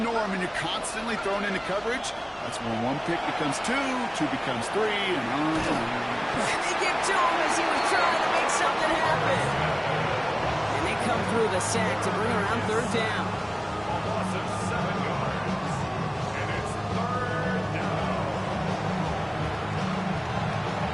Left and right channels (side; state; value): both; identical; correlation 1.00